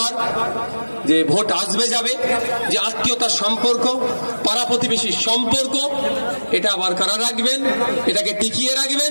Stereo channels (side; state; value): both; inverted; correlation -1.00